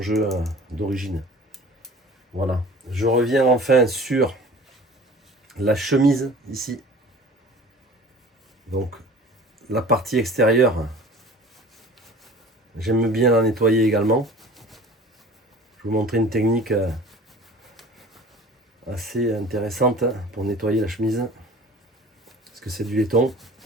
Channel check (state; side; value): normal; both; correlation 0.43